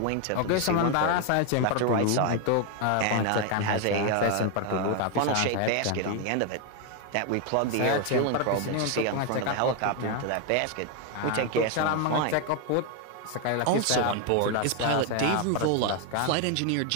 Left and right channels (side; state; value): both; different; correlation 0.01